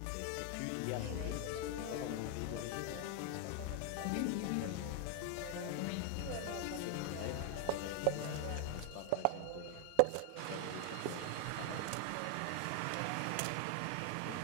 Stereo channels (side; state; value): both; different; correlation 0.00